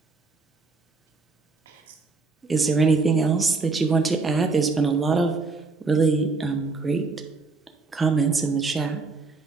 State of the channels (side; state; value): left; quieter; 4.0 dB